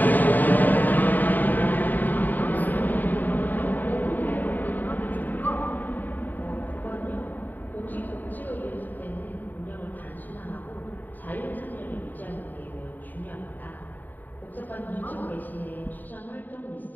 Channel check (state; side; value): late; right; 0.087 ms